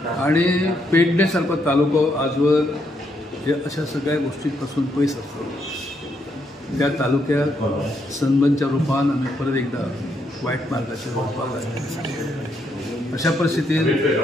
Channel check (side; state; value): both; normal; correlation 0.76